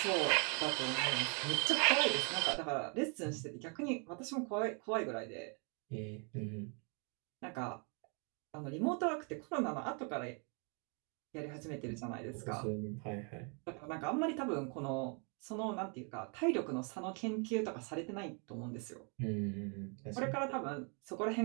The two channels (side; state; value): left; quieter; 36.7 dB